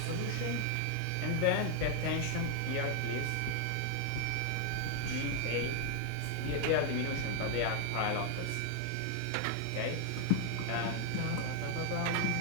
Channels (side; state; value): both; different; correlation 0.00